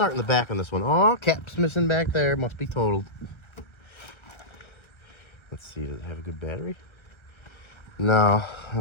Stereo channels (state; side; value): late; right; 1.3 ms